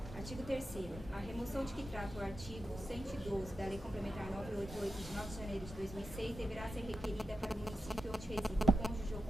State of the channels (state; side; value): normal; both; correlation 0.90